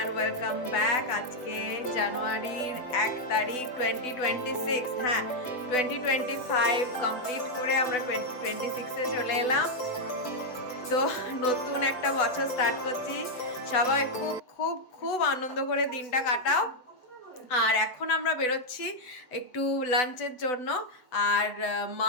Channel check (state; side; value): late; right; 8.0 ms